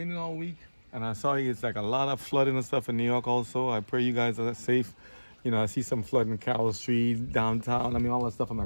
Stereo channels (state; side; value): inverted; both; correlation -1.00